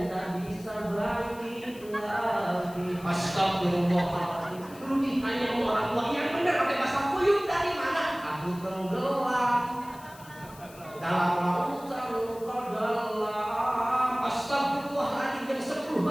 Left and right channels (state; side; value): noise; left; hiss, 21 dB below the sound